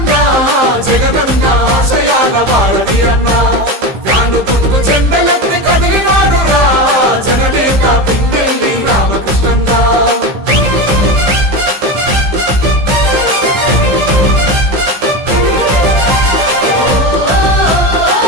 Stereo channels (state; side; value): late; left; 15 ms